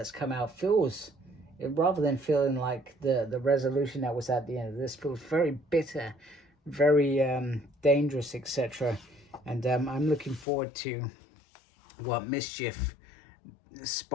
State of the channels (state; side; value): drops out; right; at 10.5 s